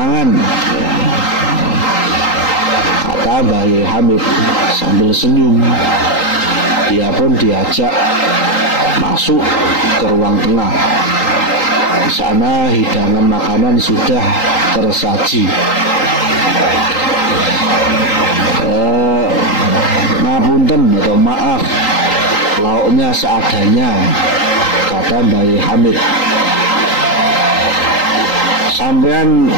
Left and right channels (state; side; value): late; right; 3.8 ms